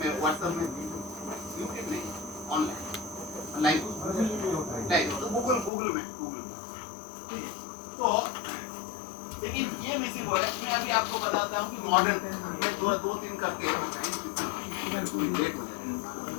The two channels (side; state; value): right; drops out; at 5.7 s